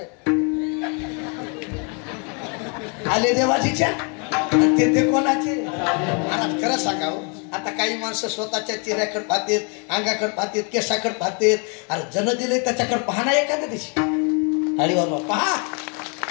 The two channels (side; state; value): right; quieter; 36.5 dB